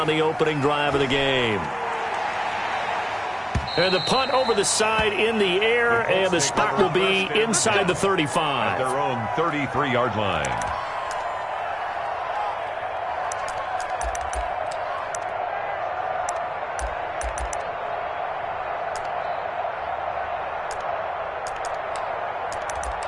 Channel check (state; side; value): identical; both; correlation 1.00